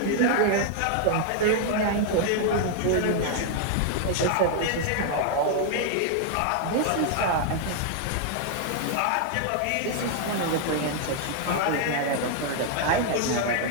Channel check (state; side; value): different; both; correlation 0.00